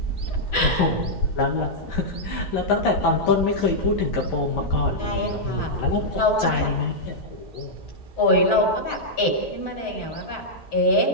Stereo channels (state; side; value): late; right; 6.5 ms